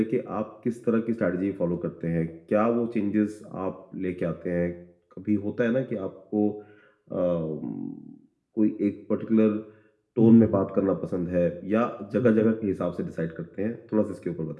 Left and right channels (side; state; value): both; identical; correlation 1.00